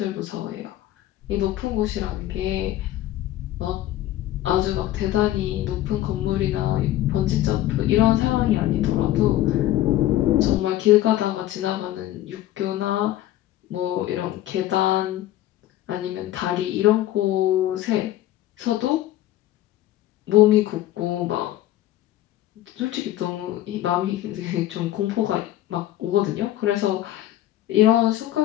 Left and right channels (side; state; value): right; quieter; 14.1 dB